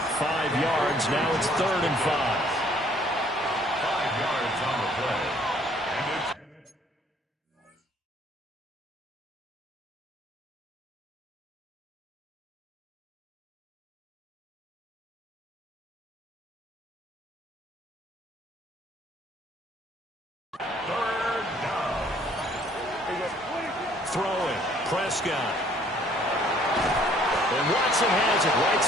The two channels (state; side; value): normal; both; correlation 0.60